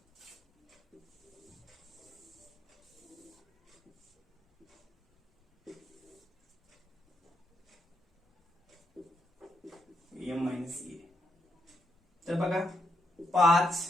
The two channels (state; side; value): normal; both; correlation 0.81